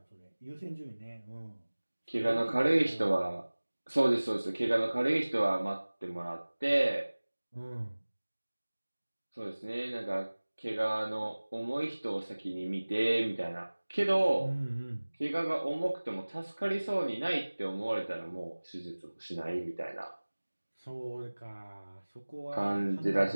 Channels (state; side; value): inverted; both; correlation -1.00